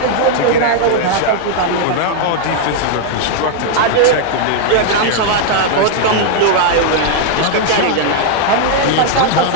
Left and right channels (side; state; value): both; different; correlation 0.00